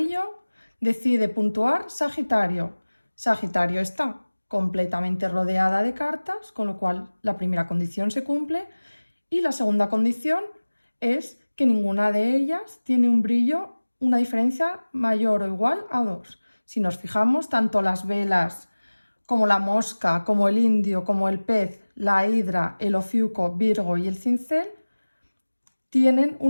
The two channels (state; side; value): inverted; both; correlation -1.00